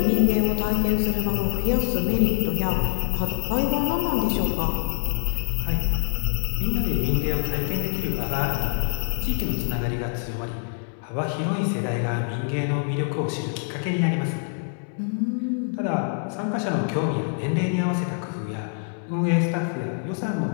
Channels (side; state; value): right; silent; 59 dB below the other